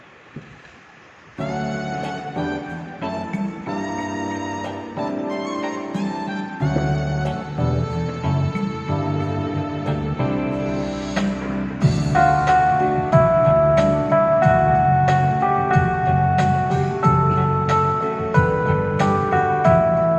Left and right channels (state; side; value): identical; both; correlation 1.00